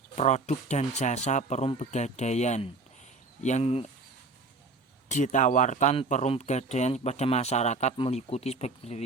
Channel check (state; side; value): quieter; left; 3.5 dB